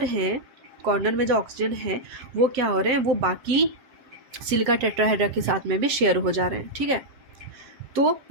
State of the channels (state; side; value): late; left; 7.7 ms